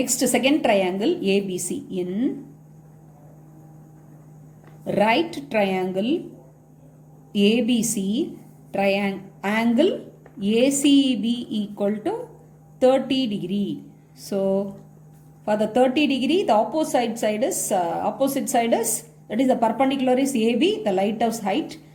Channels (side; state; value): both; identical; correlation 1.00